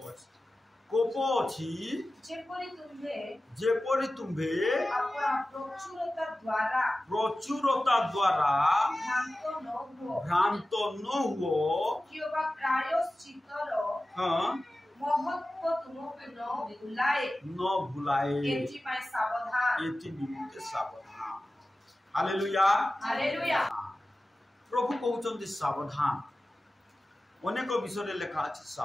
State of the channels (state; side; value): normal; both; correlation 0.95